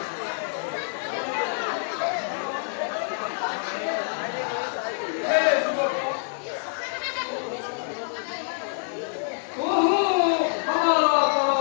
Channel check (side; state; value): right; silent; digital silence